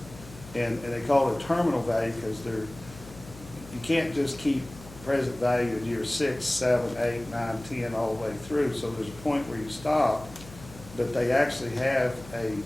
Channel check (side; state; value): left; noise; hum, 18 dB below the sound